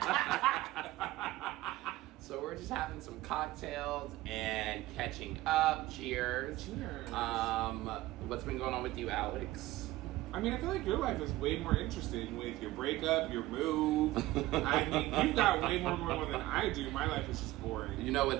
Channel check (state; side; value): quieter; left; 17.3 dB